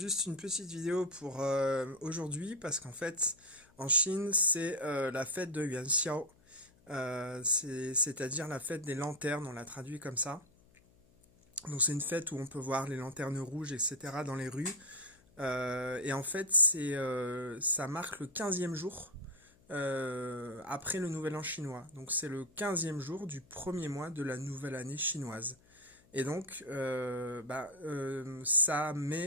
une petite vidéo pour aujourd'hui parce qu'en fait en Chine c'est la fête de Yuanxiao. C'est-à-dire la fête des lanternes, on l'a traduit comme ça. Donc c'est une fête où on peut voir les lanternes rouges, etc. dans les rues. Et en fait ça marque le 15e jour après le nouvel an chinois. Donc c'est le 15e jour du premier mois de la nouvelle année chinoise. Et donc, ça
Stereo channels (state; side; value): noise; left; hum, 30 dB below the sound